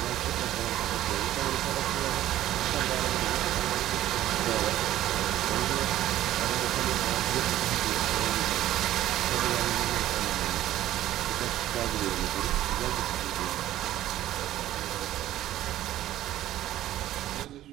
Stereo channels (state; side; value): quieter; left; 13.6 dB